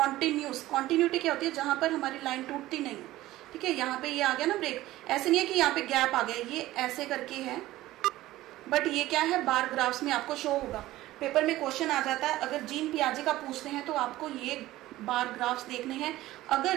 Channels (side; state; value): left; quieter; 16.2 dB